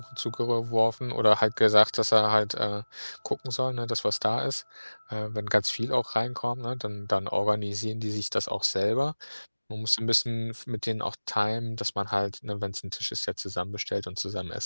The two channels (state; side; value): inverted; both; correlation -1.00